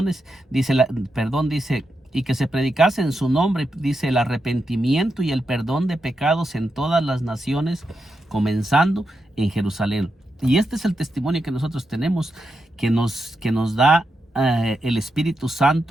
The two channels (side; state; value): both; normal; correlation 0.86